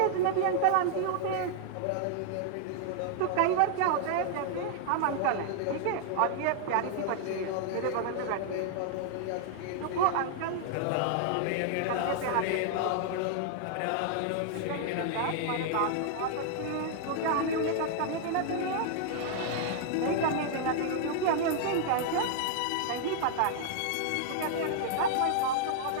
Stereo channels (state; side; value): different; both; correlation -0.01